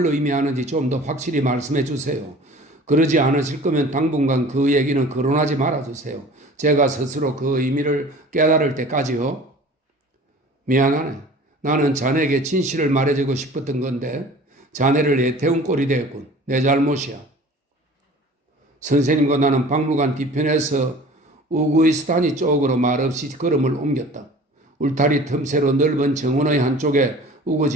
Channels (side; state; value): both; normal; correlation 0.44